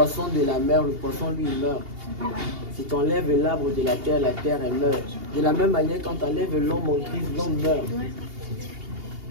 de la mer, le poisson lui il meurt. Si tu enlèves l'arbre de la terre elle meurt. De la même manière, quand tu enlèves l'homme en Christ, l'homme meurt.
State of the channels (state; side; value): late; left; 2.8 ms